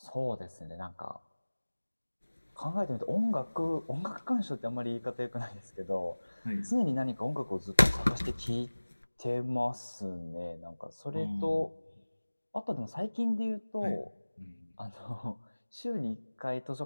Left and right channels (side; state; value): both; inverted; correlation -1.00